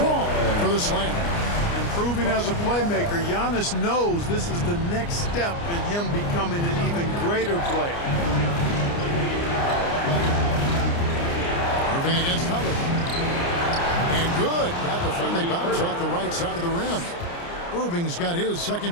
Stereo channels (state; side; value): late; right; 29 ms